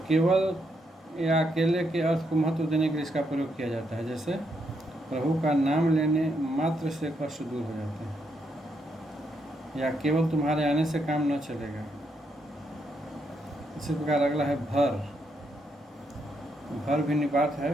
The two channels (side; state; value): both; normal; correlation 0.78